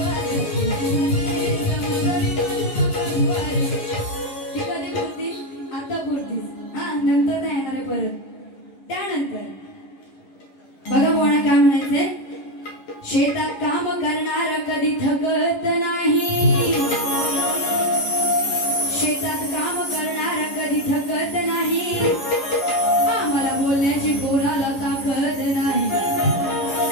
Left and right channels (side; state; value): right; late; 11 ms